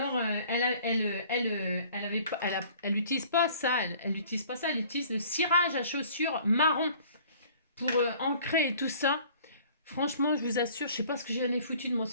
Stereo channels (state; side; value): inverted; both; correlation -0.52